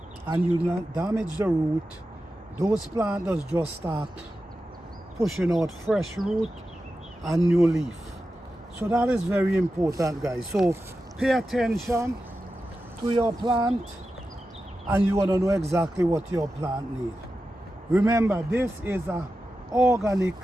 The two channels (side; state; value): both; normal; correlation 0.91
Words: and you not damage the root, those plants just start pushing out fresh root and new leaf. So that is very important, guys. So pay attention to your plant and you want to know exactly what your plant needs. Remember, this is an organic